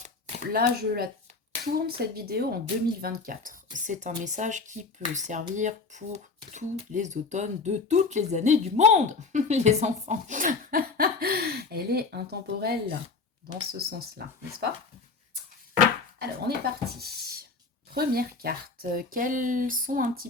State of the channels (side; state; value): right; quieter; 4.3 dB